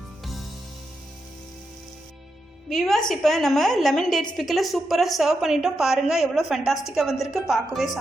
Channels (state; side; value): normal; both; correlation 0.85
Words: வியூவர்ஸ், இப்போ நம்ம லெமன் டேட்ஸ் பிக்கில் சூப்பராக சர்வ் பண்ணிட்டோம். பாருங்கள் எவ்வளோ ஃபேண்டாஸ்டிக்காக வந்திருக்கு. பார்க்கவே